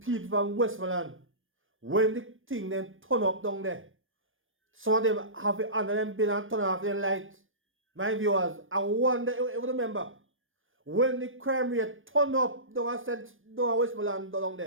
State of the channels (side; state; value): left; late; 0.59 ms